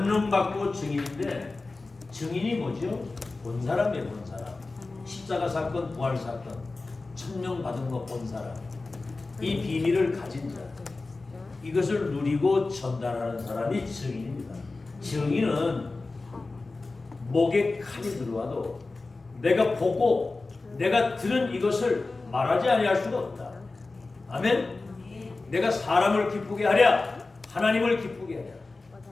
받고 증인인데 증인이 뭐죠? 본 사람이에요. 본 사람. 십자가 사건, 부활 사건, 천명 받은 거 본 사람. 이 비밀을 가진 자. 이것을 누리고 전달하는 사람이 증인입니다. 증인은 목에 칼이 들어와도 내가 보고 내가 들은 이것을 말하지 아니할 수가 없다. 아멘. 내가 사람을 기쁘게 하랴 하나님을 기쁘게 하랴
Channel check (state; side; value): quieter; right; 3.5 dB